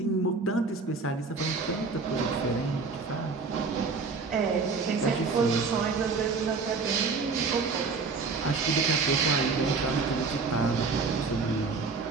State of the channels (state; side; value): quieter; left; 4.5 dB